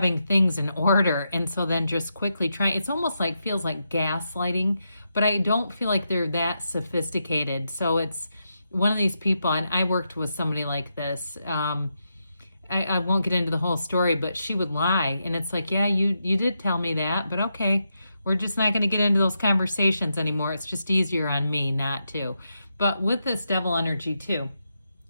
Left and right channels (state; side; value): inverted; both; correlation -0.84